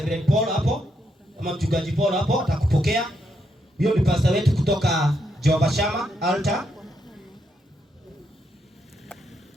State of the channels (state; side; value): normal; both; correlation 0.79